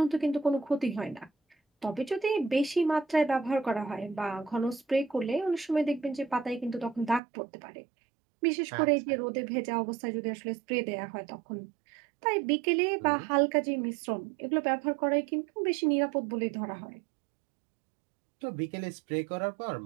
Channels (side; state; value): left; drops out; at 7.2 s